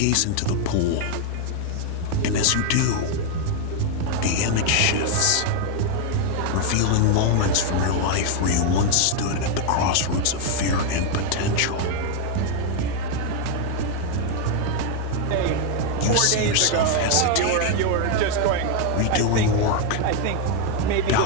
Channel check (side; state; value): both; different; correlation 0.00